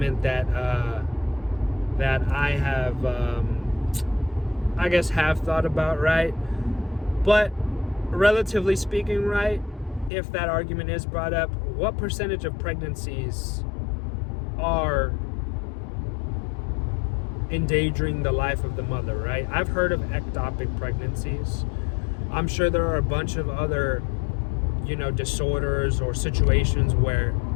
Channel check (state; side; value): drops out; right; at 10.1 s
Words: that I have, I guess, have thought about, right? But relatively speaking, right, if that argument is brought up, what percentage of pregnancies are endangering the life of the mother, right? I've heard of ectopic pregnancies. I'm sure there are a bunch of other, disorders or situations where,